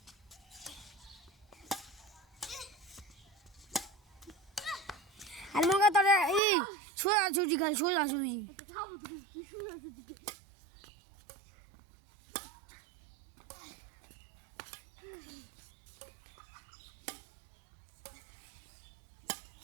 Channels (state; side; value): drops out; left; at 6.4 s